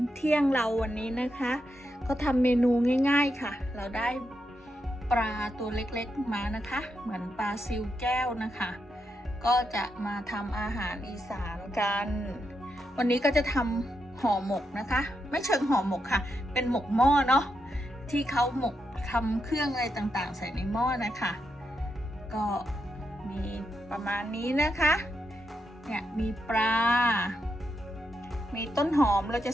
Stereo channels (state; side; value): normal; both; correlation 0.84